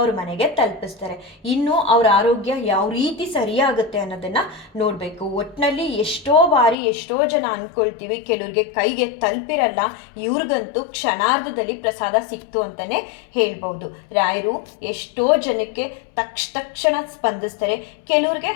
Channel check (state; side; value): drops out; right; at 6.8 s